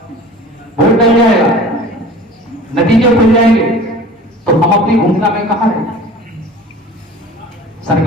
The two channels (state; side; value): normal; both; correlation 0.42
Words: वोट डल जाएगा, नतीजे खुल जाएंगे, तो हम अपनी भूमिका में कहां हैं?